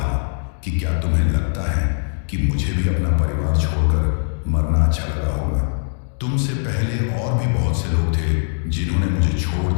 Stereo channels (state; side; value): silent; right; digital silence